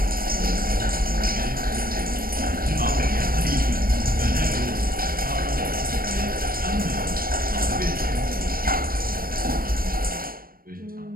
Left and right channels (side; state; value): left; late; 0.42 ms